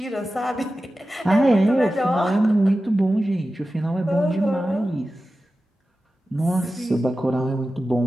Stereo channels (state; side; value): normal; both; correlation 0.94